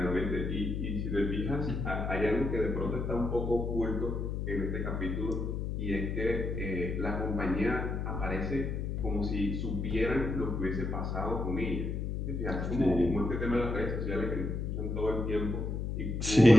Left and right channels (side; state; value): left; noise; hum, 2 dB below the sound